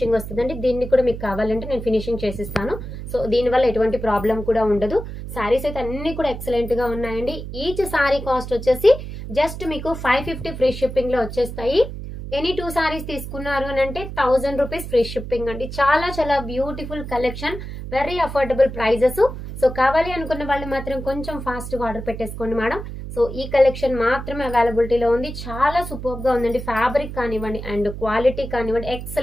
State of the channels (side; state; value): right; noise; hum, 9 dB below the sound